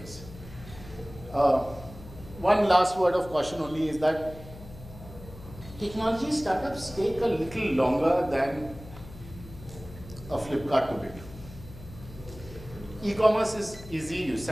One last word of caution only is that technology startups take a little longer than a Flipkart to build. E-commerce is easy, you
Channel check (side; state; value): left; noise; hum, 16 dB below the sound